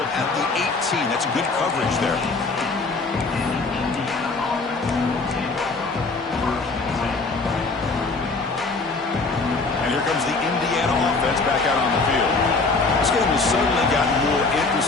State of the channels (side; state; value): right; quieter; 3.8 dB